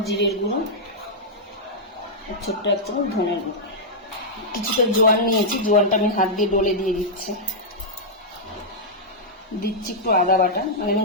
জিরের গুঁড়ো, আর ছোট্ট 1 চামচ ধনের গুঁড়ো। কিছুটা জোয়ান নিয়েছি, জোয়ানটা আমি হাত দিয়ে ডলে দিয়ে দিচ্ছি। দিচ্ছি একটু আদা বাটা, মানে আমি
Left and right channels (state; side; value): normal; both; correlation -0.07